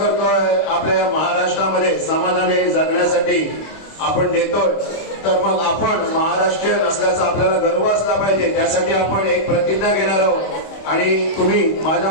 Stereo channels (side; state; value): right; late; 26 ms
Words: आपल्या महाराष्ट्रामध्ये समाधानी जगण्यासाठी आपण देतोय. तर मग आपण महाराष्ट्रीयन असल्याचा आपल्याला गर्व असला पाहिजे. त्यासाठी आपण एक प्रतिज्ञा घेणार आहोत आणि तुम्ही माझ्या